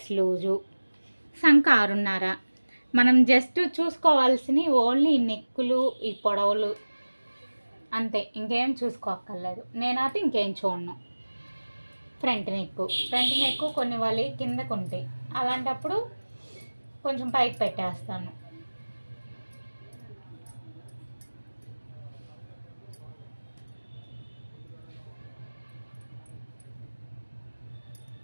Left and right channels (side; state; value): both; inverted; correlation -1.00